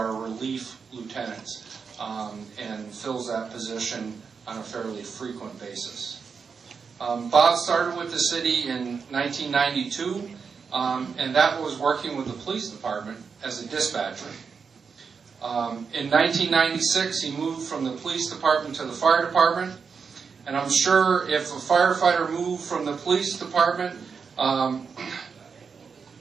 relief lieutenants and fills that position on a fairly frequent basis. Bob started with the city in 1992, and that was working with the police department as a dispatcher. In 1996, he moved from the police department to the fire department, and I'm sure if a firefighter moved from the police department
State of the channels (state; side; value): quieter; left; 5.7 dB